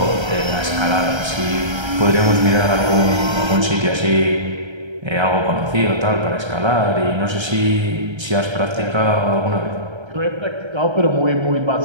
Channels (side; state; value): left; late; 1.3 ms